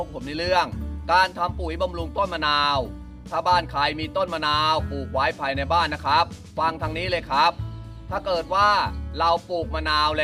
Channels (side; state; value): both; identical; correlation 1.00